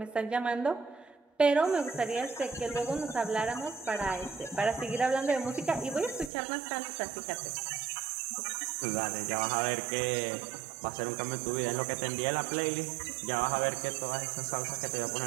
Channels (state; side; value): drops out; left; at 6.3 s